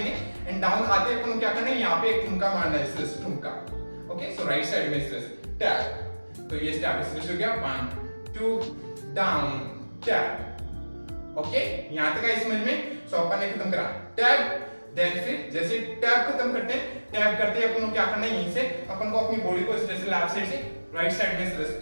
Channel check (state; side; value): inverted; both; correlation -1.00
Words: एंड डाउन आते अपन को क्या करना है, यहाँ पे एक ठुमका मारना है इस तरह से, ठुमका। ओके, सो राइट साइड में इस तरह से टैप। तो ये स्टेप इस तरह से हो गया 1 2 डाउन टैप। ओके, यहां तक आई समझ में। सो अपन ने खत्म करा टैप, देन फिर जैसे टैप खत्म करते हैं, टैप करते अपन को क्या करना है, यहीं से अपन को अपनी बॉडी को इस तरह से लेफ्ट साइड से राइट साइड में इस तरह से